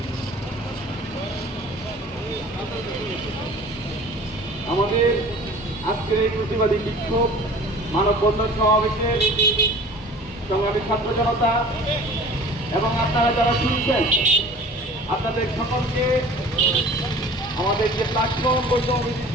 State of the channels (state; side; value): normal; both; correlation 0.44